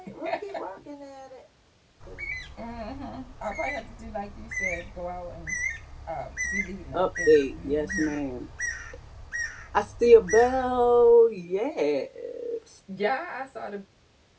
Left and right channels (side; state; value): both; identical; correlation 1.00